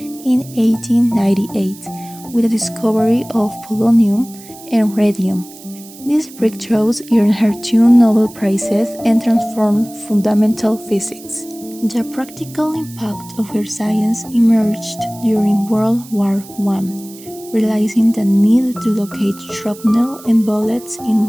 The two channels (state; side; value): noise; right; hiss, 19 dB below the sound